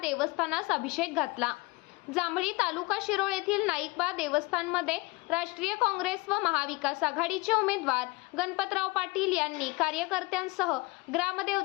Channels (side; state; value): right; quieter; 23.7 dB